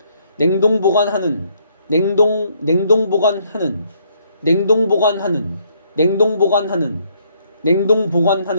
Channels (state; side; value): inverted; both; correlation -0.69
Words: 냉동 보관하는 냉동 보관하는, 냉동 보관하는, 냉동 보관하는, 냉동